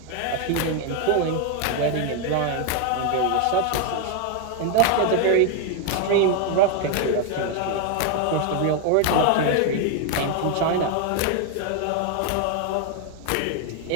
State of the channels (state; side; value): different; both; correlation 0.01